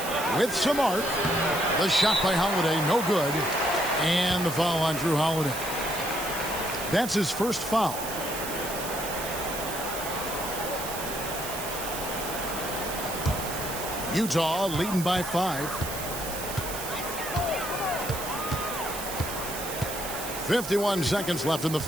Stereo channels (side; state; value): right; noise; hiss, 7 dB below the sound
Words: With some arc. The shot by Holiday, no good. And the foul on Drew Holiday. That's his first foul. Utah leading by 5. 51 seconds left in the